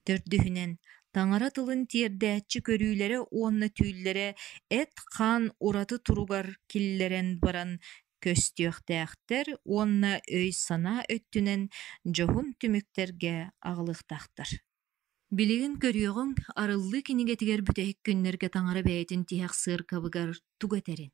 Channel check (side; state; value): left; quieter; 13.9 dB